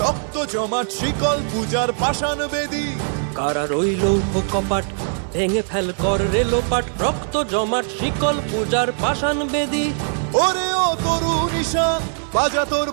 রক্ত জমাট শিকল পূজার পাষাণ বেদী। কারা রইল কপাট ভেঙে ফেল কর রে লোপাট, রক্ত জমাট শিকল পূজার পাষাণ বেদী। ওরে ও তরু নিশান বাজা তোর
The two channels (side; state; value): left; silent; digital silence